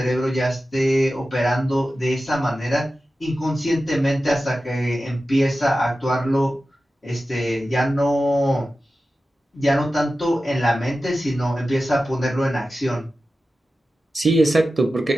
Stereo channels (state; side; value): normal; both; correlation 0.94